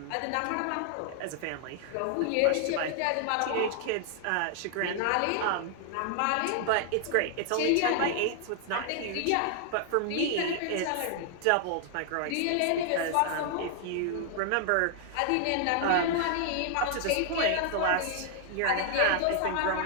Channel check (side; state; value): both; different; correlation 0.00